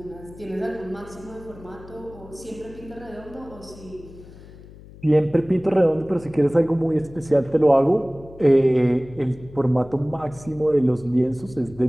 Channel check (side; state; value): left; noise; hum, 19 dB below the sound